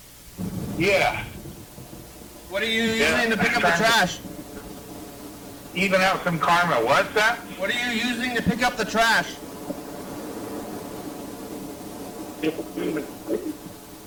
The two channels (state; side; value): identical; both; correlation 1.00